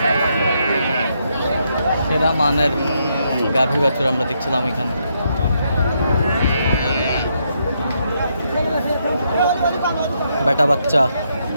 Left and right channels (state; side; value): inverted; both; correlation -0.78